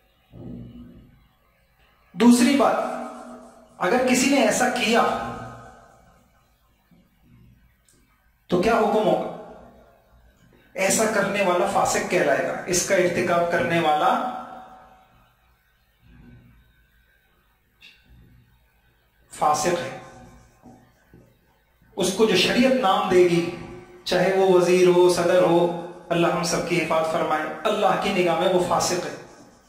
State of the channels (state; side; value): identical; both; correlation 1.00